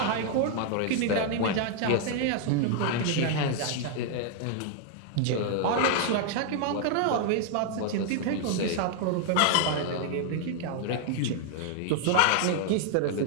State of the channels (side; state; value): both; different; correlation 0.00